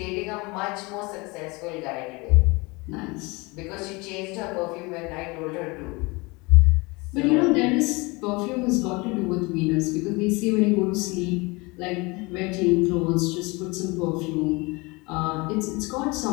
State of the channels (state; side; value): quieter; right; 25.7 dB